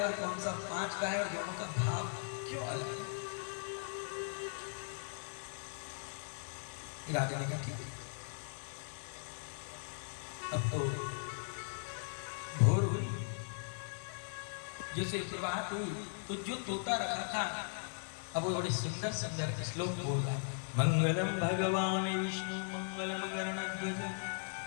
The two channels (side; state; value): right; silent; 52 dB below the other